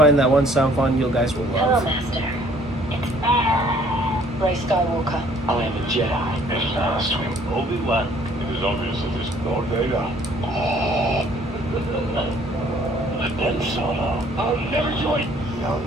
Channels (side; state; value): both; normal; correlation 0.59